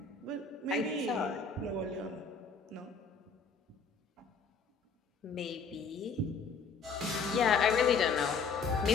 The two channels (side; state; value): right; quieter; 5.1 dB